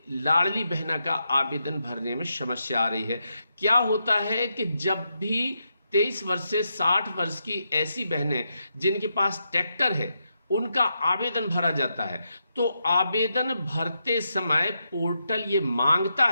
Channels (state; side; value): inverted; both; correlation -0.83